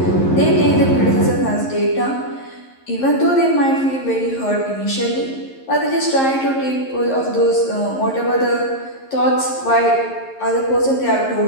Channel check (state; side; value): late; right; 11 ms